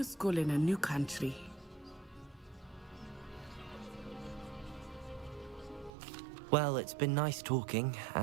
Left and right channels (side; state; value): left; drops out; at 5.9 s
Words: school in a new country. Well, it's been nice talking